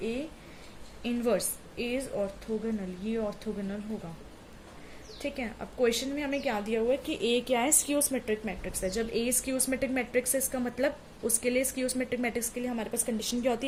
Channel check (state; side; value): identical; both; correlation 1.00